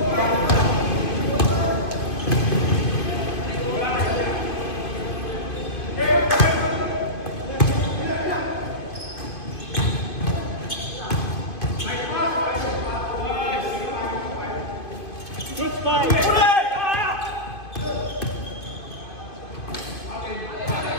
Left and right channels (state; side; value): late; right; 2.5 ms